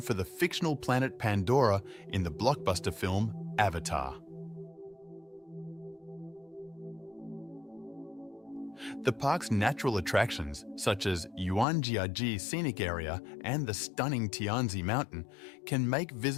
the fictional planet Pandora in the blockbuster film Avatar. The park's natural attractions, such as Yuanjiaji Scenic Area and the stunning Tianzi Mountain, can make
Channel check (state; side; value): drops out; right; at 11.7 s